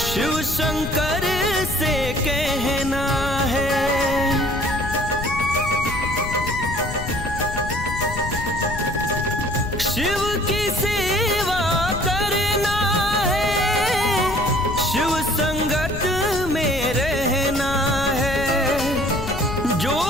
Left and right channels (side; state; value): left; noise; rumble, 7 dB below the sound